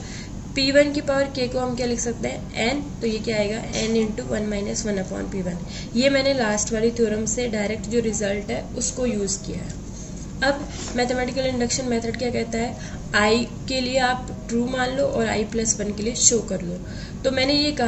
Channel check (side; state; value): both; identical; correlation 1.00